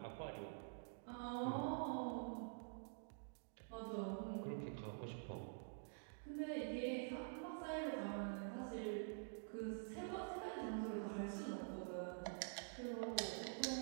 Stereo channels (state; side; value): silent; left; digital silence